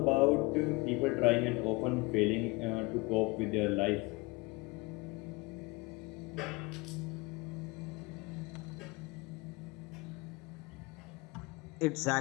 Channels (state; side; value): quieter; right; 24.9 dB